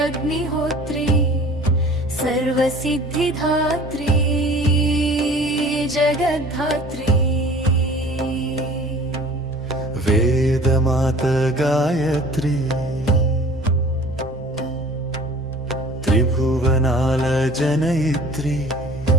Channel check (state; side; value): normal; both; correlation 0.46